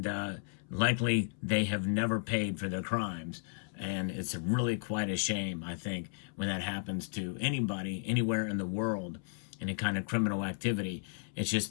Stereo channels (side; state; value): right; silent; 55 dB below the other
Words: likely they have never paid for their crimes. And it's really quite a shame, I think, when that happens to anybody, anywhere in the world, any kind of criminal activity. It's just